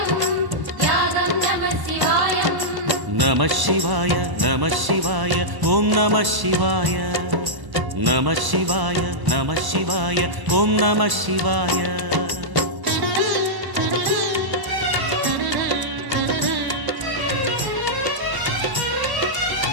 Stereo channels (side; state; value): left; late; 1.1 ms